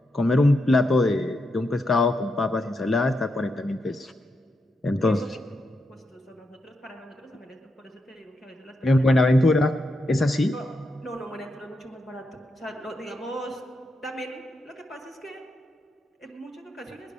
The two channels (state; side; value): normal; both; correlation 0.84